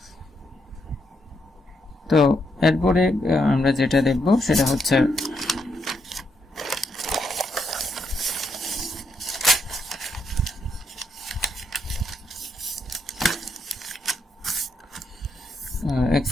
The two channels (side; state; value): both; normal; correlation 0.78